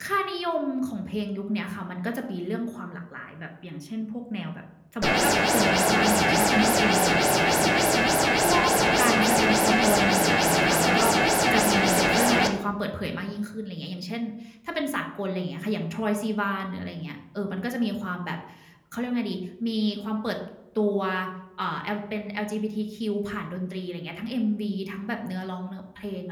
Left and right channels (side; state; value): both; identical; correlation 1.00